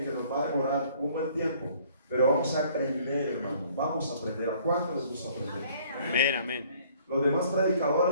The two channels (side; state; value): both; inverted; correlation -0.58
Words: que nos va a demorar un buen tiempo. Pero vamos a aprender, hermano. Vamos a aprender. ¿A cuánto les gusta aprender? Amén, amén. Los demás